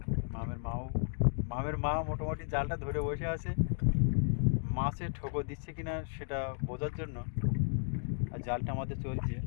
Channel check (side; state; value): right; silent; digital silence